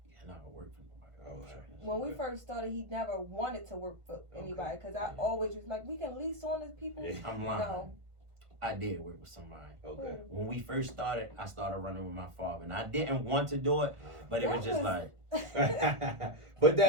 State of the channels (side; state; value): left; late; 1.5 ms